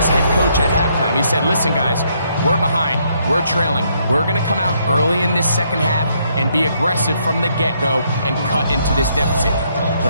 head coach at halftime. He said, listen, guys, we're behind. We're trailing. We're going to come out early in this second half and be aggressive from the get-go and cut into this deficit. But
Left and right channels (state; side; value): inverted; both; correlation -0.72